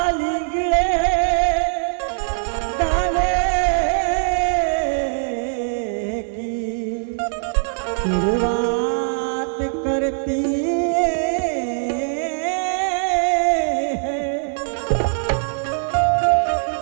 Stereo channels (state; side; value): silent; left; digital silence